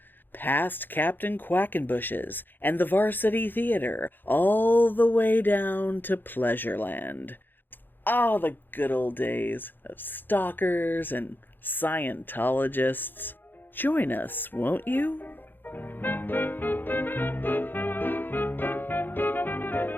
past Captain Quackenbush's and the Varsity Theater, all the way down to Pleasureland. Ah, the good old days of stalkers and Scientologists. Join us, won't you?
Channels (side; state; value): right; late; 0.093 ms